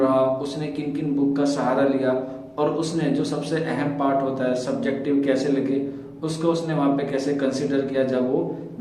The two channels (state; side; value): identical; both; correlation 1.00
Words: उसने किन किन बुक का सहारा लिया, और उसने जो सबसे अहम पार्ट होता है सब्जेक्टिव कैसे लगे उसको उसने वहां पे कैसे कंसिडर किया जब वो